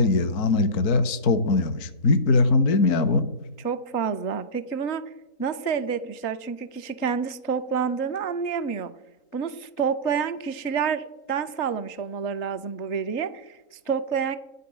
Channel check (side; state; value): right; late; 3.8 ms